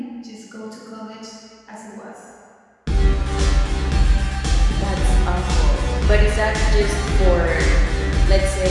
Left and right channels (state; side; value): identical; both; correlation 1.00